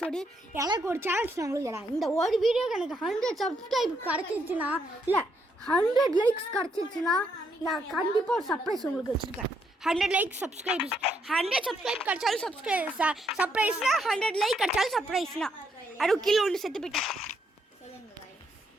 எனக்கு ஒரு சான்ஸ் நான் உங்களுக்கு தரேன். இந்த ஒரு வீடியோக்கு எனக்கு 100 சப்ஸ்கிரைப் கிடச்சிருச்சுன்னா இல்லை 100 லைக்ஸ் கிடச்சிருச்சுன்னா நான் கண்டிப்பாக ஒரு சர்ப்ரைஸ் உங்களுக்கு வச்சுருக்கேன். 100 லைக் சப்ஸ்கிரைப்ஸ் 100 சப்ஸ்கிரைப் கிடச்சாலும் சர்ப்ரைஸ்னா 100 லைக் கிடச்சாலும் சர்ப்ரைஸ்னா அது கீழே ஒன்று செத்து போயிட்டேன்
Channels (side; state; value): both; normal; correlation 0.76